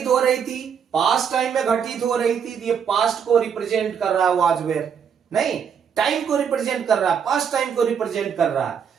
हो रही थी, पास्ट टाइम में घटित हो रही थी, ये पास्ट को रिप्रेजेंट कर रहा है वाज वेयर। नहीं, टाइम को रिप्रेजेंट कर रहा है, पास्ट टाइम को रिप्रेजेंट कर रहा है,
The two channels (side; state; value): left; quieter; 7.4 dB